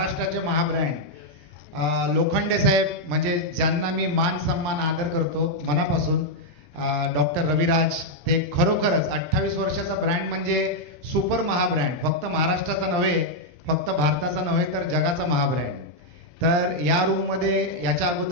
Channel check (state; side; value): normal; both; correlation -0.02